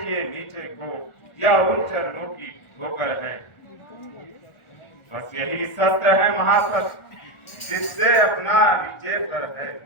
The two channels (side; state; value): right; late; 1.4 ms